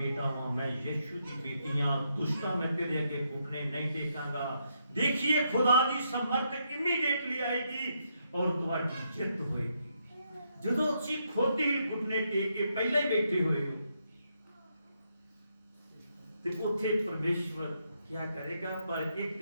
ਹਾਂ, ਮੈਂ ਯਿਸੂ ਦੀ ਬੇਟੀ ਹਾਂ, ਦੁਸ਼ਟਾਂ ਮੈਂ ਤੇਰੇ ਅੱਗੇ ਘੁਟਨੇ ਨਹੀਂ ਟੇਕਾਂਗਾ। ਦੇਖੀਏ ਖੁਦਾ ਦੀ ਸਮਰਥ ਇਮੀਡੀਏਟਲੀ ਆਏਗੀ ਔਰ ਤੁਹਾਡੀ ਜਿੱਤ ਹੋਏਗੀ। ਜਦੋਂ ਤੁਸੀਂ ਖੁਦ ਹੀ ਘੁਟਨੇ ਟੇਕ ਕੇ ਪਹਿਲਾਂ ਹੀ ਬੈਠੇ ਹੋਏ ਹੋ ਤੇ ਉੱਥੇ ਪਰਮੇਸ਼ਵਰ क्या करेगा? पर एक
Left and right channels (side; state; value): both; inverted; correlation -0.78